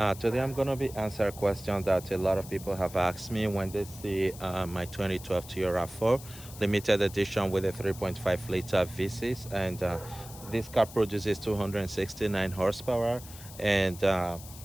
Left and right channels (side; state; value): left; noise; hiss, 16 dB below the sound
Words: Today I'm going to be answering a question that a lot of people have asked me when they see my 2012 Toyota RAV4 limited edition with a 3.5 liter V6, and this car produces 269 horsepower and